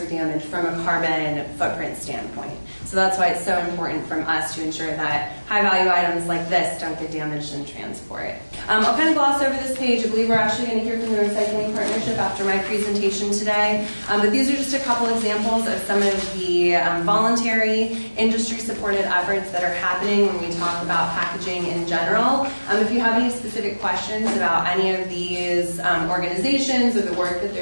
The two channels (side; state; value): both; inverted; correlation -1.00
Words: damaged from a carbon footprint standpoint. So that's why it's so important from us to ensure that high-value items like this don't get damaged in transport. I'll kind of gloss over this page. I believe we're actually going to hear from the Recycling Partnership after my presentation today. But these are just a couple examples of some of the voluntary industry-supported efforts that are happening when we talk about packaging in general. If you have any specific questions about any of these organizations or the work that